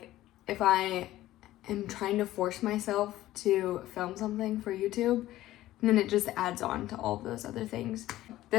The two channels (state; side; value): quieter; right; 15.0 dB